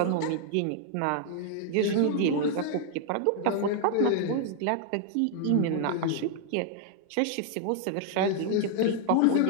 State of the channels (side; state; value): both; different; correlation 0.00